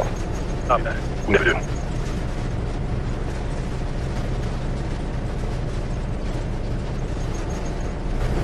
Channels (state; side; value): identical; both; correlation 1.00